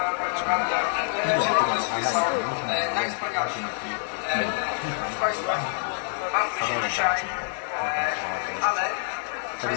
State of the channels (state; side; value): silent; right; digital silence